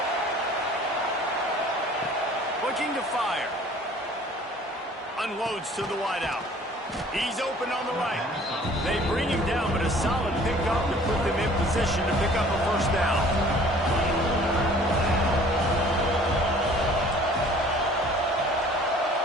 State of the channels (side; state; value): both; normal; correlation 0.51